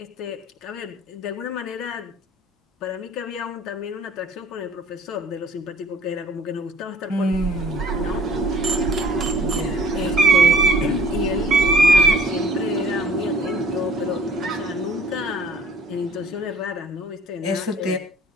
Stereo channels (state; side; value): normal; both; correlation 0.53